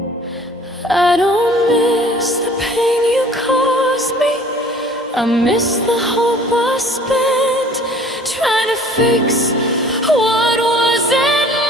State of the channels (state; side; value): normal; both; correlation 0.51